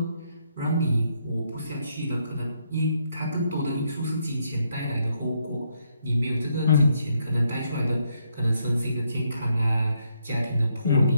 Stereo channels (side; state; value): both; inverted; correlation -0.75